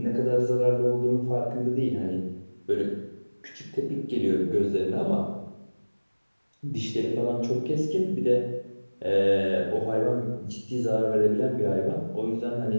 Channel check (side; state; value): both; inverted; correlation -1.00